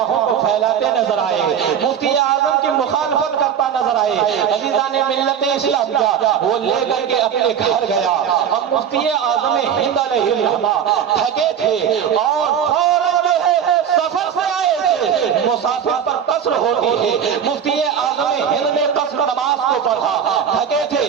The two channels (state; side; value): quieter; left; 8.4 dB